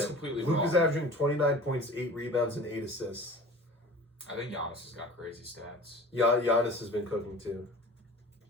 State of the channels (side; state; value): both; normal; correlation 0.40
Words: completely wrong. Luka's averaging 29 points, 8 rebounds, and 8 assists. I think Giannis has got crazy stats. Giannis has been cooking too.